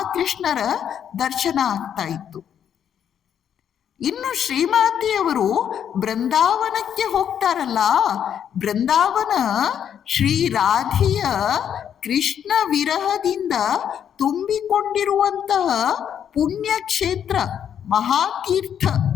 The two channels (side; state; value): right; quieter; 8.9 dB